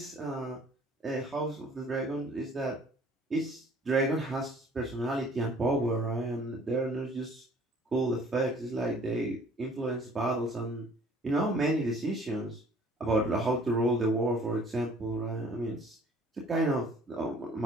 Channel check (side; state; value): both; normal; correlation 0.54